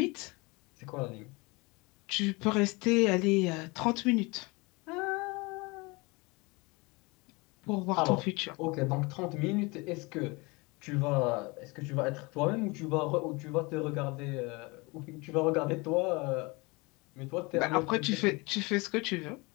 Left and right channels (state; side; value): quieter; right; 26.0 dB